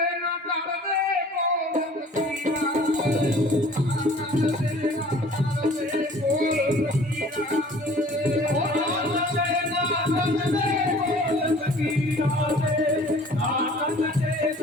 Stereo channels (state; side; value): normal; both; correlation 0.50